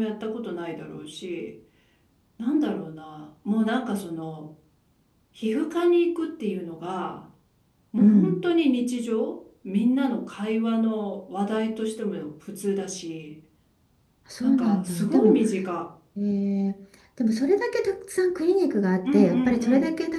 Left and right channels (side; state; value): both; identical; correlation 1.00